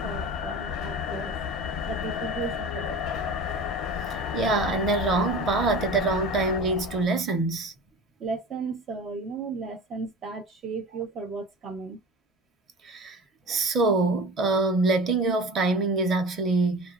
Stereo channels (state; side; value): normal; both; correlation 0.35